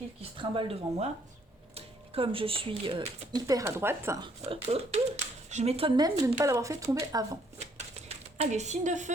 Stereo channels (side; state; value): both; normal; correlation 0.67